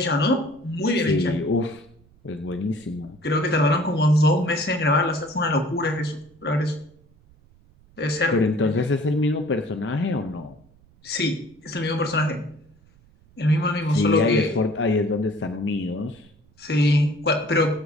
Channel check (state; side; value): noise; right; rumble, 29 dB below the sound